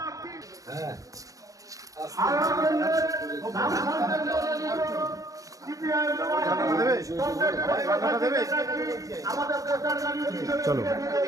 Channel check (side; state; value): left; late; 0.16 ms